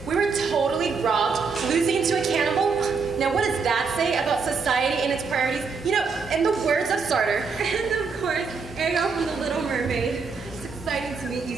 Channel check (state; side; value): quieter; left; 5.0 dB